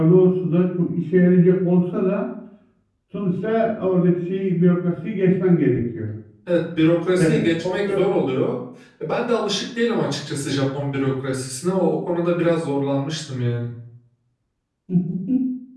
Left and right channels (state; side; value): identical; both; correlation 1.00